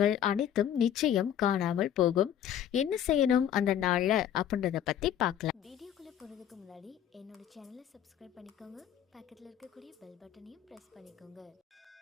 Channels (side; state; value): right; quieter; 10.0 dB